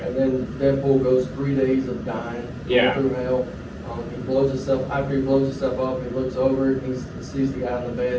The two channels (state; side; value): identical; both; correlation 1.00